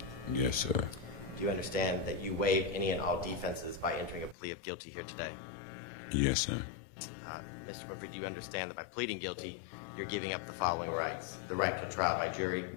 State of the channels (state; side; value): drops out; right; at 4.4 s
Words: Yes, sir. Do you understand that you waive any and all defenses by entering a plea of guilty here today? Yes, sir. Mr. Winfrey, do you understand that by pleading guilty, you're giving up the following rights: the right to trial by jury,